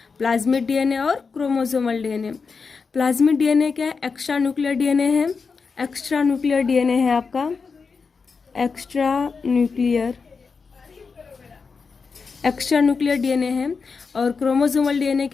प्लाज्मिड डीएनए और क्रोमोसोमल डीएनए। प्लाज्मिड डीएनए क्या है, एक्स्ट्रा न्यूक्लियर डीएनए है। एक्स्ट्रा न्यूक्लियर डीएनए है आपका, एक्स्ट्रा न्यूक्लियर डीएनए है। और क्रोमोसोमल डीएनए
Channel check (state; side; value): quieter; right; 5.1 dB